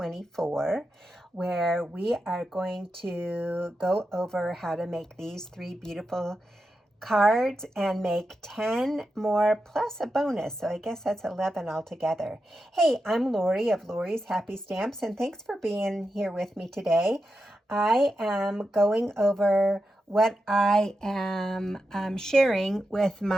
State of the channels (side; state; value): both; normal; correlation 0.89